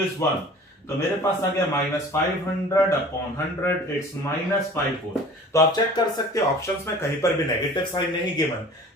इज 1। तो मेरे पास आ गया -500 अपॉन 100, इट्स -5 वोल्ट। तो आप चेक कर सकते हो ऑप्शंस में कहीं पर भी नेगेटिव साइन नहीं गिवन,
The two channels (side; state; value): both; normal; correlation 0.44